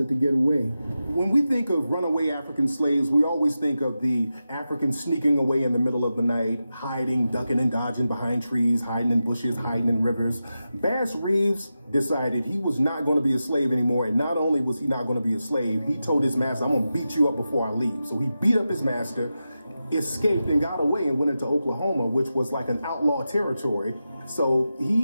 to get away. When we think of runaway African slaves, we always think of the Africans sneaking away in the middle of the night, hiding, ducking and dodging behind trees, hiding in bushes, hiding in rivers. Bass Reeves decided he was not going to be a slave anymore, and not only was he not going to be a slave, he told his master, I'm going to beat you up before I leave. So he beat up his master, escaped and got away and went into Oklahoma, which was like an outlaw territory. So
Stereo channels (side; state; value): both; inverted; correlation -0.91